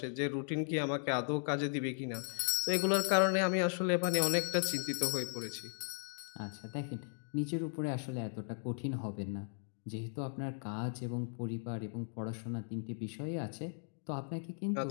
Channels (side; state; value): right; silent; digital silence